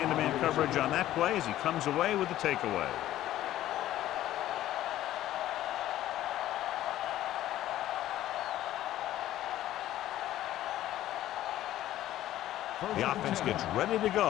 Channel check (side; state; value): right; quieter; 13.6 dB